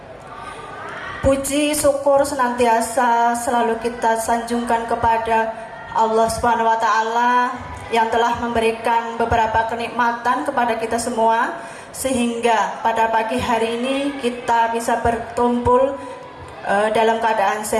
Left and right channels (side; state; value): both; identical; correlation 1.00